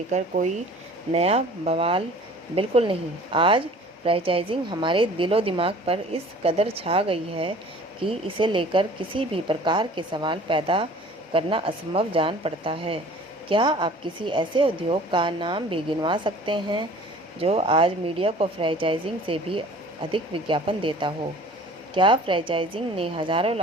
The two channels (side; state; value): both; normal; correlation 0.47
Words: कोई नया बवाल बिल्कुल नहीं। आज फ्रेंचाइजिंग हमारे दिलो दिमाग पर इस कदर छा गई है कि इसे लेकर किसी भी प्रकार के सवाल पैदा करना असंभव जान पड़ता है। क्या आप किसी ऐसे उद्योग का नाम भी गिनवा सकते हैं जो आज मीडिया को फ्रेंचाइजिंग से भी अधिक विज्ञापन देता हो? क्या फ्रेंचाइजिंग ने हजारों